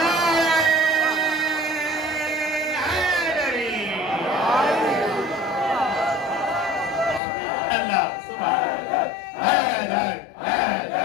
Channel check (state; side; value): drops out; right; at 7.2 s